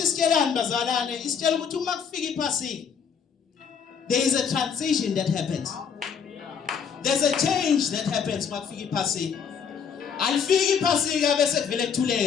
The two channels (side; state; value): right; quieter; 6.9 dB